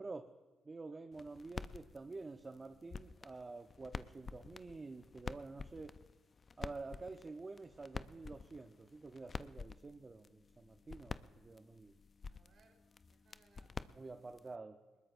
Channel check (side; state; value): both; normal; correlation 0.90